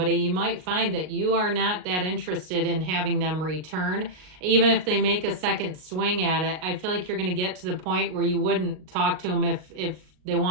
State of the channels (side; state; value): left; late; 38 ms